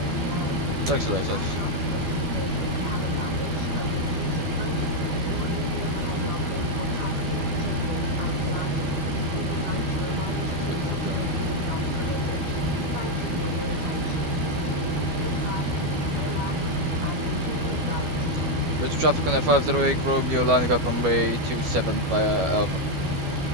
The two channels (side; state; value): left; late; 12 ms